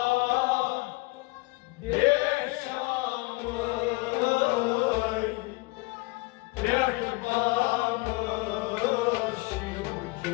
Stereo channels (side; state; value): right; quieter; 24.9 dB